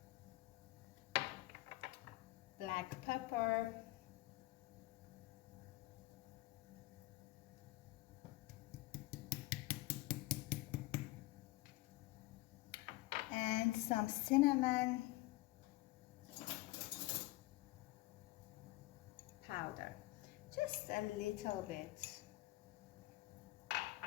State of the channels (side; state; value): right; quieter; 19.5 dB